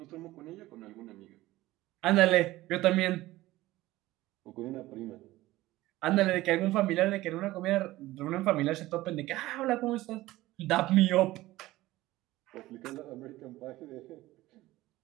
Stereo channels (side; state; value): left; quieter; 17.3 dB